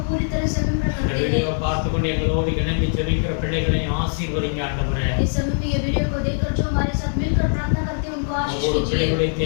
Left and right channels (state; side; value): silent; right; digital silence